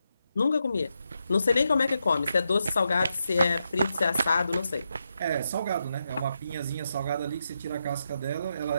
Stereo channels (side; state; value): both; inverted; correlation -0.85